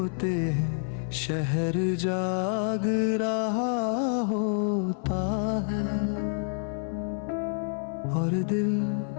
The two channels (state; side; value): silent; right; 58 dB below the other